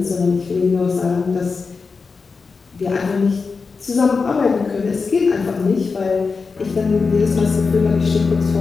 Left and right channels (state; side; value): quieter; right; 4.7 dB